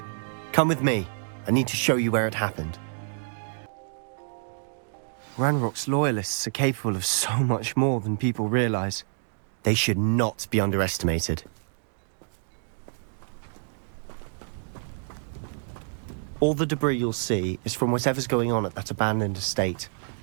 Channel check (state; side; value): silent; left; digital silence